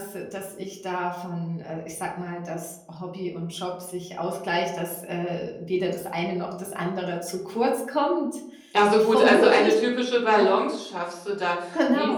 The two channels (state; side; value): identical; both; correlation 1.00